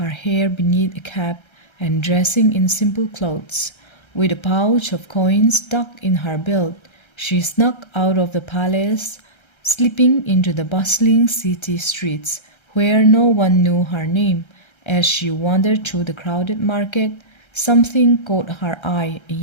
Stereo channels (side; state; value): right; late; 1.3 ms